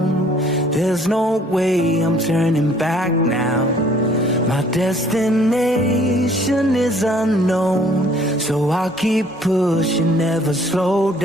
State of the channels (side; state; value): both; normal; correlation 0.58